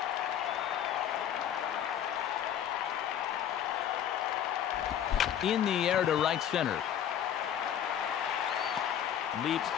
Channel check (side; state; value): right; quieter; 9.8 dB